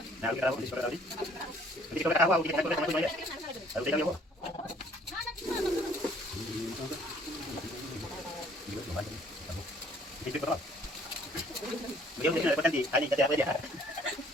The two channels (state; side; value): normal; both; correlation 0.59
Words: Nah, kita awal di sekolah tadi. Jadi kalau awal kita sama sama ya. Lalu dia mau. Itu berapa? Dia mungkin ada potensi. Ini jadi apa dia?